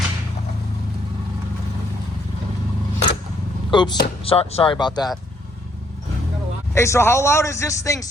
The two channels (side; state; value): both; normal; correlation 0.69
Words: oops, sorry about that. Hey, so how loud is this thing